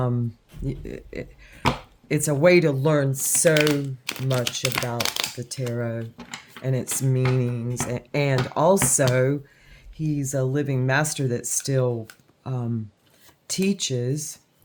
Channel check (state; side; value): identical; both; correlation 1.00